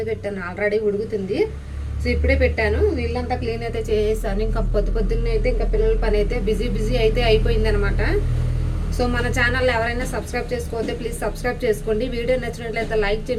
పెట్టాను, ఆల్రెడీ ఉడుకుతుంది. సో ఇప్పుడే పెట్టాను, నీళ్ళంతా క్లీన్ అయితే చేసేసాను. ఇంకా పొద్దున్నే అయితే ఇంకా పిల్లల పని అయితే బిజీ అయితే అయిపోయిందనమాట. సో మన ఛానల్ ఎవరైనా సబ్స్క్రైబ్ చేసుకోవద్దే ప్లీజ్ సబ్స్క్రైబ్ చేసుకోండి. వీడియో నచ్చినట్లయితే లైక్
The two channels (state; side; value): identical; both; correlation 1.00